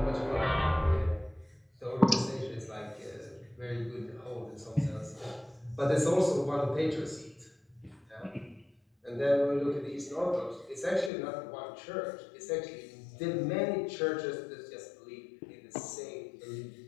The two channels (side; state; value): right; drops out; at 11.1 s